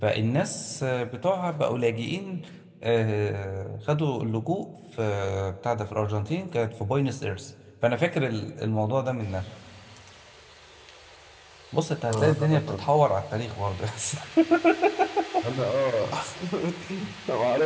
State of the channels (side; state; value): both; identical; correlation 1.00